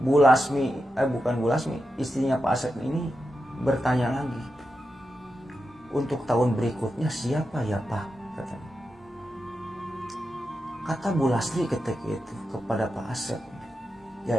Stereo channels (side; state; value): both; normal; correlation 0.89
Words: Bu Lasmi, bukan Bu Lasmi, istrinya Pak Asep ini bertanya lagi, untuk tahun berikutnya siapa ya Pak, katanya. Kata Bu Lasri ketika itu kepada Pak Asep, ya